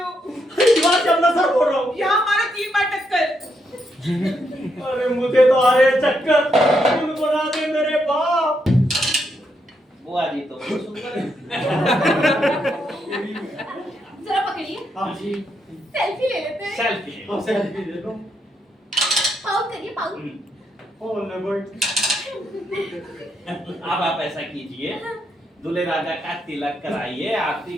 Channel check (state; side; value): normal; both; correlation 0.79